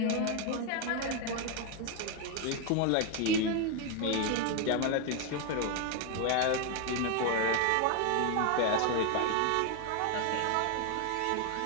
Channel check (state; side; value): different; both; correlation 0.01